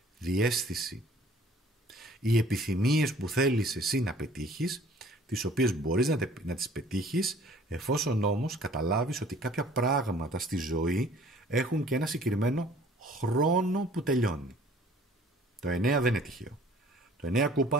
διαίσθηση. Οι επιθυμίες που θέλεις εσύ να πετύχεις, τις οποίες μπορείς να τις πετύχεις, εφόσον όμως καταλάβεις ότι κάποια πράγματα στη ζωή έχουν και ένα συγκεκριμένο χρόνο που τελειώνει. Το 9 δεν είναι τυχαίο. Το 9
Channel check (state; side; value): normal; both; correlation 0.53